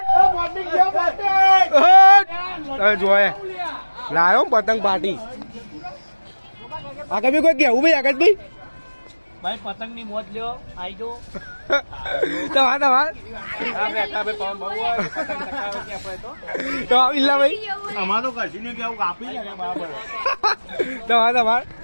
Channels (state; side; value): inverted; both; correlation -1.00